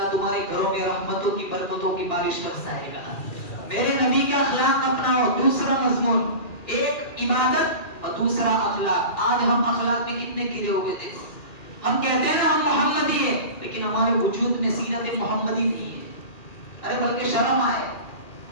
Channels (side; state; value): right; late; 2.4 ms